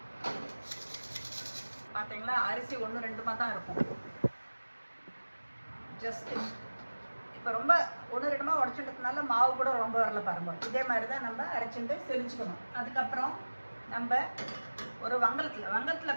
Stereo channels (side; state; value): both; inverted; correlation -1.00